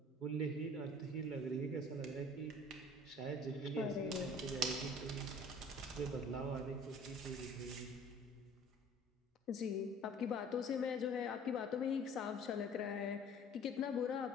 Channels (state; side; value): normal; both; correlation 0.49